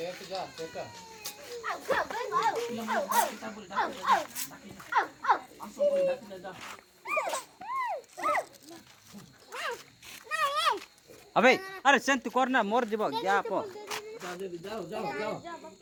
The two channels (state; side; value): identical; both; correlation 1.00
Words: अबे अरे Saint करना मोर जीव क्या आप